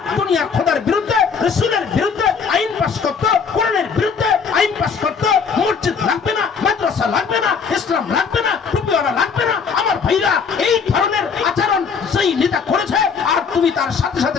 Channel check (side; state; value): right; quieter; 5.9 dB